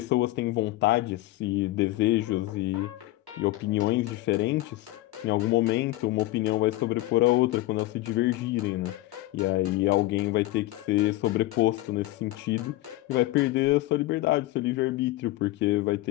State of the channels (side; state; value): right; quieter; 17.8 dB